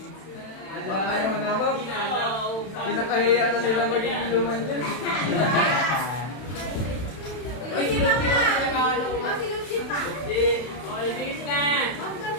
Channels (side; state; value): right; late; 32 ms